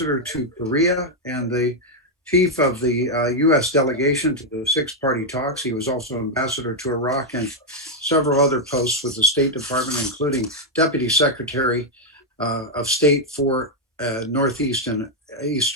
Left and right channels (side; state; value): both; normal; correlation -0.01